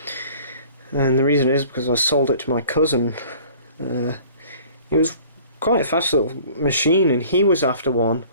And the reason is because I sold it to my cousin. It was quite a fast little machine, and he was after one,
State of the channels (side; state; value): both; inverted; correlation -0.50